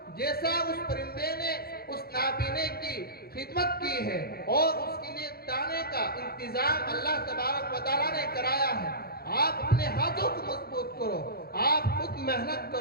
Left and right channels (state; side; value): late; right; 0.45 ms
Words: جیسا اس پرندے نے اس نابینے کی خدمت کی ہے اور اس کے لیے دانے کا انتظام اللہ تبارک و تعالیٰ نے کرایا ہے۔ آپ اپنے ہاتھوں کو مضبوط کرو، آپ خود محنت